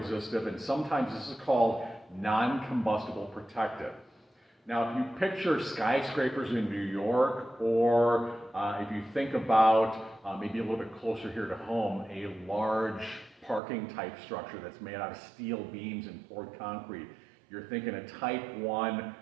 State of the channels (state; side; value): drops out; left; at 13.6 s